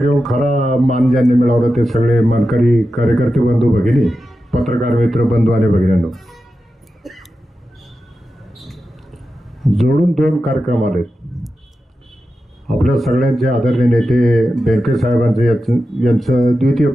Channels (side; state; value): both; normal; correlation 0.91